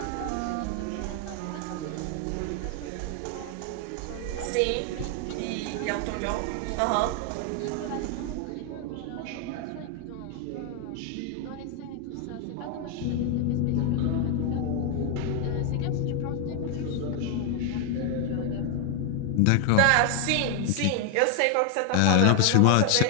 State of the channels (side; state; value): both; different; correlation 0.01